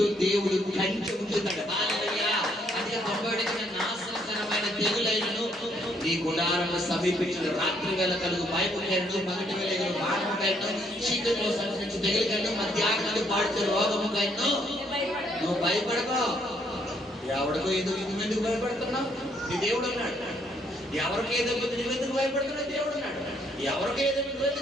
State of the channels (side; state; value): both; normal; correlation 0.69